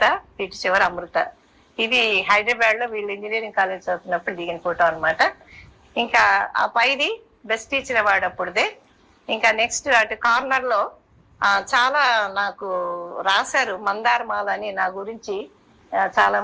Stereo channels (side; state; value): both; identical; correlation 1.00